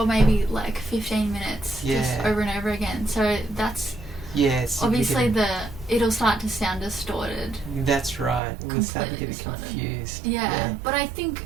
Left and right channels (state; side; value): drops out; left; at 8.4 s